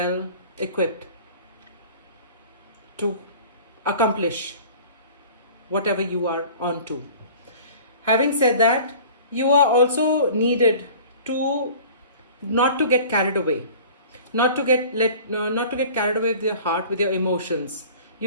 equipped to accomplish whatever you are on to. Having said that, you are also needed to not to get carried away, not to get carried away with your heart, with your emotions.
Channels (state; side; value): inverted; both; correlation -0.44